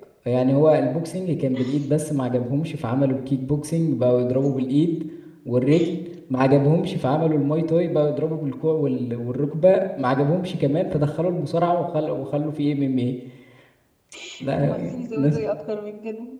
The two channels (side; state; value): both; identical; correlation 1.00